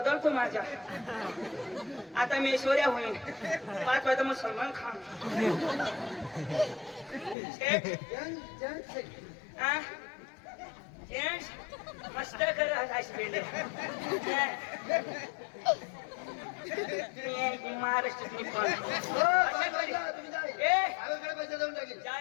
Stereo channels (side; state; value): right; drops out; at 7.4 s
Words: माझ्या. आता मी ऐश्वर्या होईन. 5 वाजता मग सलमान खान. सेठ आ जेंट्स मस्त कर हॉस्पिटल. महाराष्ट्रातली पण अशा करी. ए गावाकडे पैसा देऊन टाकेल.